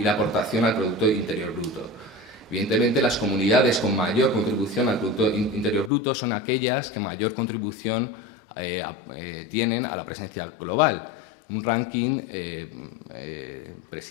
la aportación al Producto Interior Bruto. Evidentemente, las comunidades con mayor contribución al Producto Interior Bruto son aquellas que mayor contribución tienen a la presencia global. Un ranking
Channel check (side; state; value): right; drops out; at 5.9 s